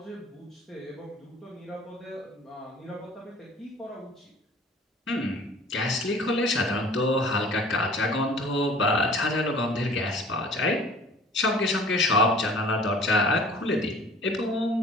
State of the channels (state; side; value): normal; both; correlation 0.48